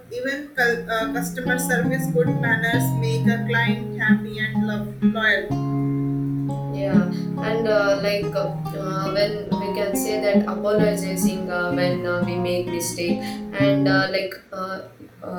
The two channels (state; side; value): identical; both; correlation 1.00